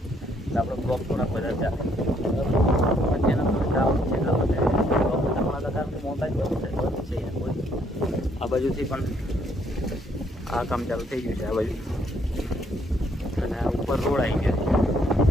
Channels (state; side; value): normal; both; correlation 0.69